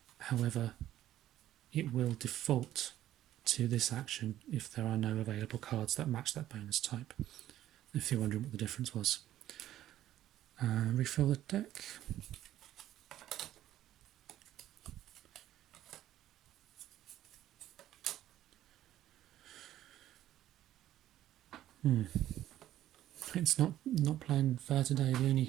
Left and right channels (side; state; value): left; quieter; 13.0 dB